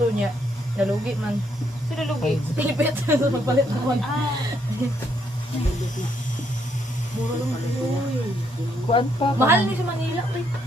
niya. Nalugi man. Sino lugi? Pilipit. Magpalit naman. Kuan pa. Mahal ni sa Manila.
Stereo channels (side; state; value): both; normal; correlation 0.73